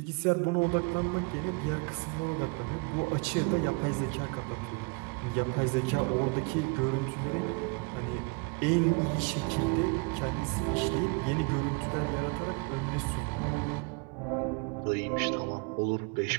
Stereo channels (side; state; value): left; quieter; 30.0 dB